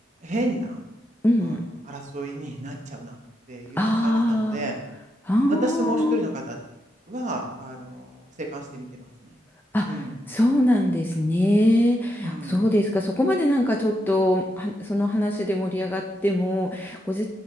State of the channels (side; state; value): both; normal; correlation 0.83